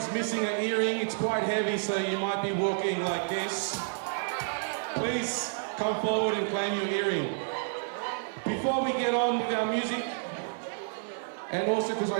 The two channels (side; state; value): left; silent; digital silence